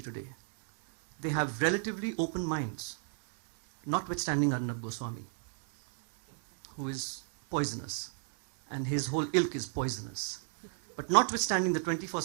today. They have relatively open minds, notwithstanding Arnab Goswami, who is poisonous, and his whole ilk is poisonous. But notwithstanding the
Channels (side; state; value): left; silent; 54 dB below the other